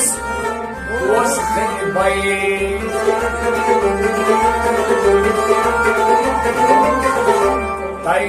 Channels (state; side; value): identical; both; correlation 1.00